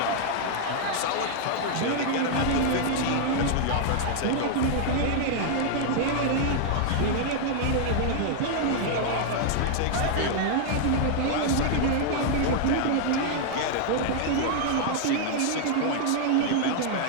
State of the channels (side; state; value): both; different; correlation -0.01